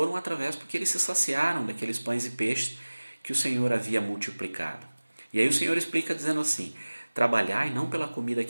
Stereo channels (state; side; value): inverted; both; correlation -1.00